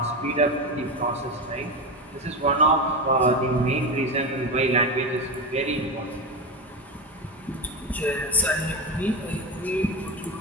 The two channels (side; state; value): both; normal; correlation 0.18